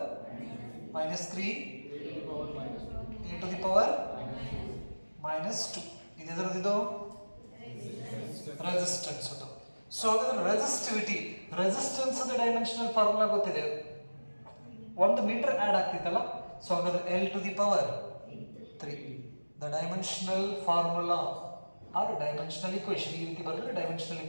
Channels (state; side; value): inverted; both; correlation -1.00